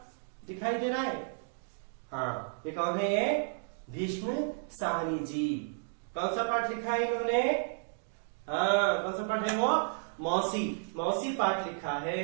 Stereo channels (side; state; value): left; silent; digital silence